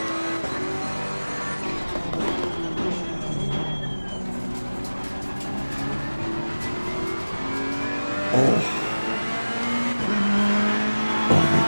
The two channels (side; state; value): both; inverted; correlation -1.00